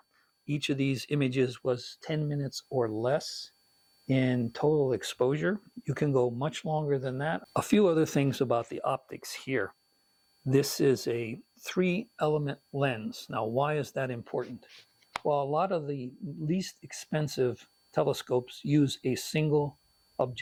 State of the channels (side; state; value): both; identical; correlation 1.00